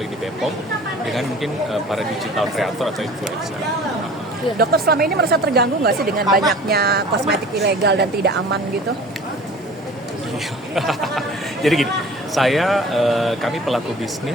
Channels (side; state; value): both; normal; correlation 0.44